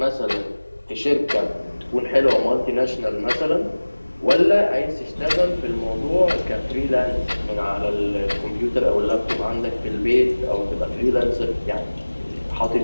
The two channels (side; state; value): both; inverted; correlation -1.00